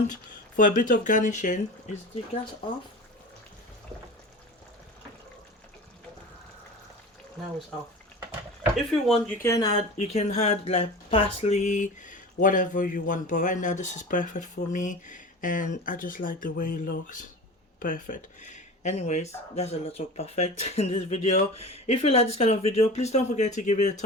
for a bit of garnishing, is the gas off? Now it's off. If you want, you can add like parsley, whatever you want. But right now this is perfect for me, and I just like the way it looks. Perfect. Anyways, that's a lot of perfect in this video. If you like this kind of video, please don't forget to give it a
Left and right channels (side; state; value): both; normal; correlation 0.34